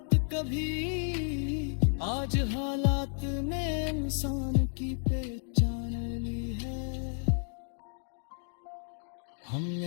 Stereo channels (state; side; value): silent; right; digital silence